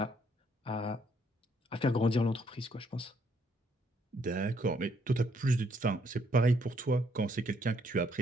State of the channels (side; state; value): both; normal; correlation 0.69